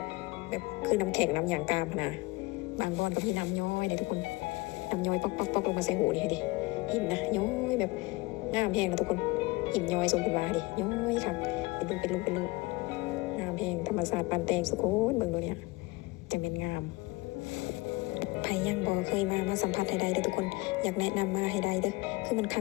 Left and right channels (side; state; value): right; quieter; 22.9 dB